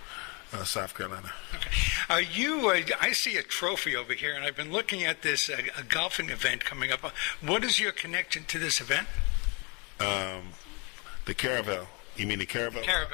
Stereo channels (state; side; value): quieter; right; 31.4 dB